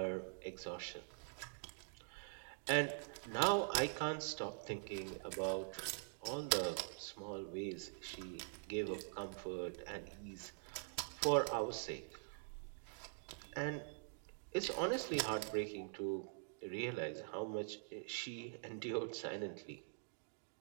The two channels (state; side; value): silent; left; digital silence